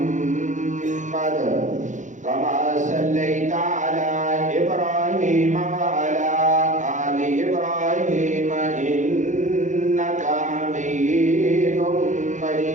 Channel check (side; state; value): left; late; 0.36 ms